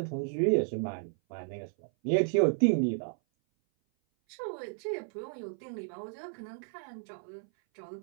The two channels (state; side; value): silent; left; 56 dB below the other